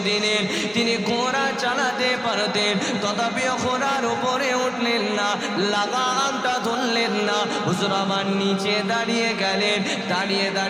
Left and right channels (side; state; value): both; identical; correlation 1.00